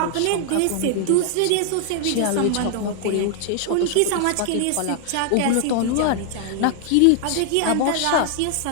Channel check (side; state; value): both; different; correlation 0.00